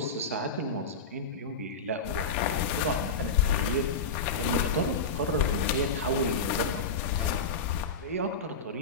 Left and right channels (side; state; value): right; quieter; 3.9 dB